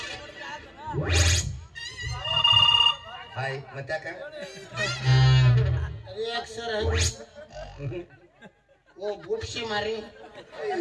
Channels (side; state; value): both; identical; correlation 1.00